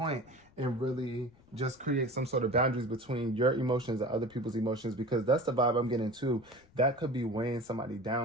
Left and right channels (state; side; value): noise; left; rumble, 28 dB below the sound